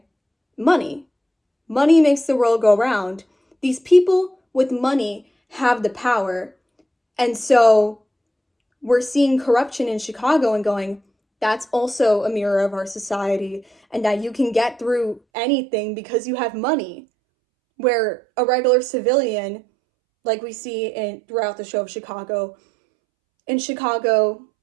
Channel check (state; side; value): drops out; left; at 15.2 s